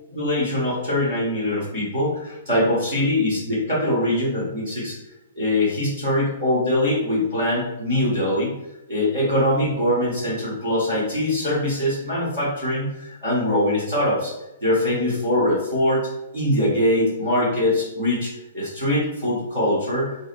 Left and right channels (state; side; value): inverted; both; correlation -0.37